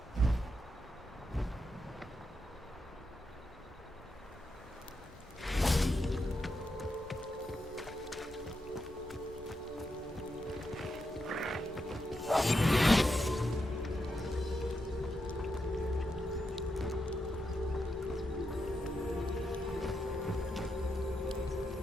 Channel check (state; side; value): normal; both; correlation 0.84